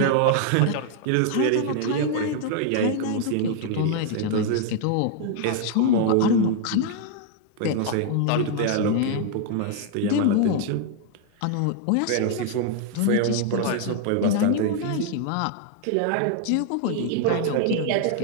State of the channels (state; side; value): different; both; correlation 0.00